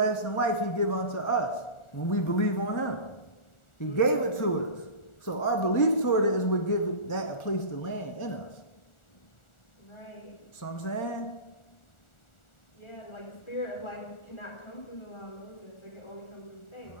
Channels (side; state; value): right; late; 1.4 ms